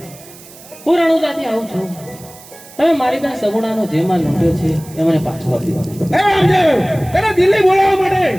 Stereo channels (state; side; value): noise; right; hiss, 20 dB below the sound